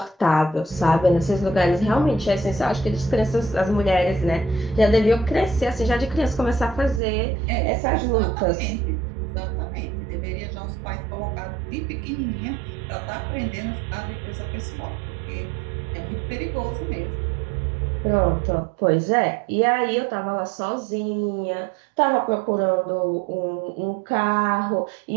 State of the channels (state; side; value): drops out; left; at 7.0 s